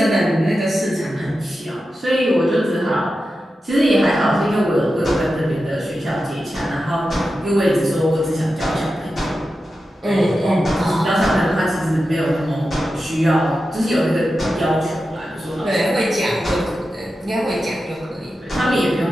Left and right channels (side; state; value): both; normal; correlation 0.91